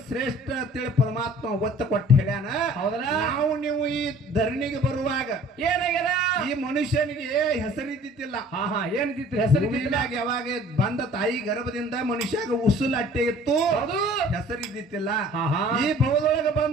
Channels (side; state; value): both; normal; correlation 0.51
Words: ಶ್ರೇಷ್ಠ ಅಂತೇಳಿ ಪರಮಾತ್ಮ ಒತ್ತ ಕೊಟ್ಟು ಹೇಳ್ಯಾನ. ಹೌದಲ್ಲ? ನಾವು ನೀವು ಈ ಧರಣಿಗೆ ಬರುವಾಗ ಏನಾಗ್ಯದ? ಈ ಮನುಷ್ಯನಿಗೆ ಹೆಸರಿದ್ದಿತ್ತಿಲ್ಲ. ಏನಿತ್ತು ಹೆಸರಿದ್ದಿಲ್ಲ. ಯಾವಾಗ ಬಂದ ತಾಯಿ ಗರ್ಭದಿಂದ ಮನುಷ್ಯಾಗ ಉಸುಲ್ ಅಟ್ಟೆ ಇತ್ತು, ಹೆಸರಿದ್ದಿತ್ತಿಲ್ಲ. ಈ ಭವದೊಳಗೆ